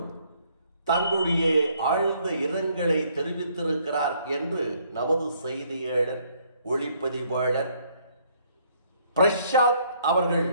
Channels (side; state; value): both; inverted; correlation -0.66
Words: தங்களுடைய ஆழ்ந்த இரங்கலை தெரிவித்திருக்கிறார் என்று நமது செய்தியாளர், ஒளிப்பதிவாளர் பிரசாத் அவர்கள்